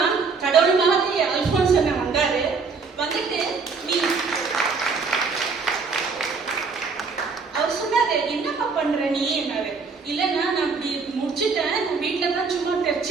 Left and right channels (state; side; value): quieter; left; 4.8 dB